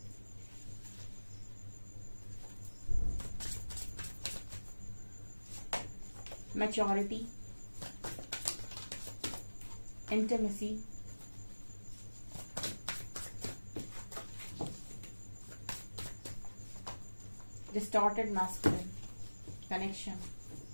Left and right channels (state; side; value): inverted; both; correlation -1.00